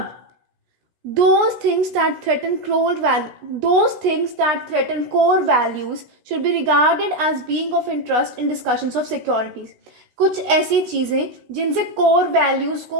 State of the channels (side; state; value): left; late; 16 ms